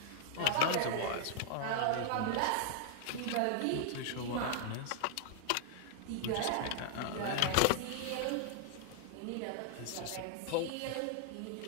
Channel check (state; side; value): different; both; correlation 0.00